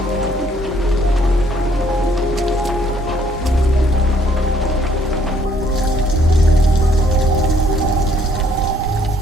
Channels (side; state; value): both; normal; correlation 0.65